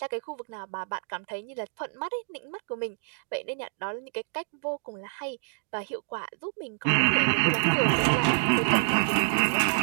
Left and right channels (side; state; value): left; silent; 59 dB below the other